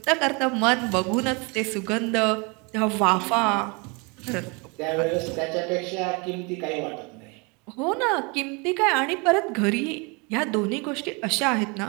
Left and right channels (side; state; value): left; quieter; 30.3 dB